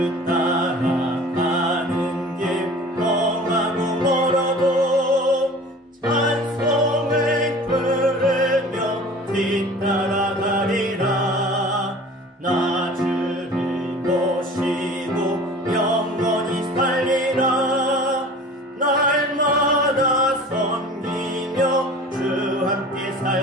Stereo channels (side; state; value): both; normal; correlation 0.43